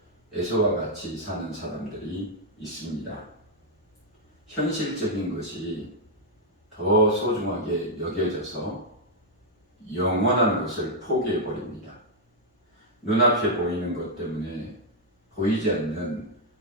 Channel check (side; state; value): both; normal; correlation -0.02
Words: 에서와 같이 사는 사람들이 있습니다. 현실적인 것이 더 소중하게 여겨져서 영원한 것을 포기해 버립니다. 눈앞에 보이는 것 때문에 보이지 않는